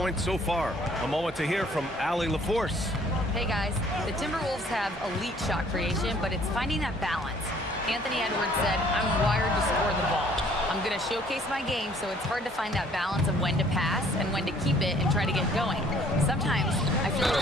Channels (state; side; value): normal; both; correlation 0.58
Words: so far. A moment to hear from Allie LaForce. Hey guys, the Timberwolves have elite shot creation, but it's finding that balance. Anthony Edwards said, I'm wired to score the ball. I'm going to showcase my game, so it's hard to find that balance of when to pass and when to keep it and try to get going. Sometimes I feel like